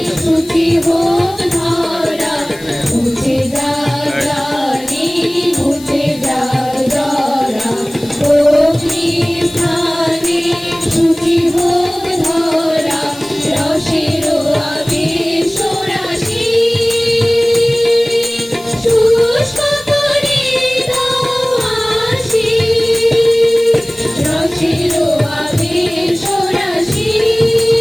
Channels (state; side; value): noise; left; hiss, 20 dB below the sound